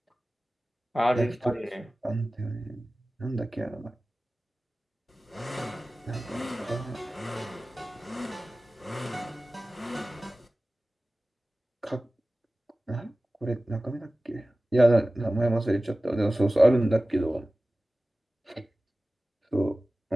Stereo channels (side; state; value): both; normal; correlation 0.97